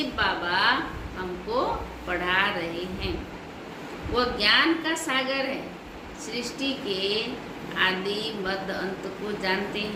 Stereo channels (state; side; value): identical; both; correlation 1.00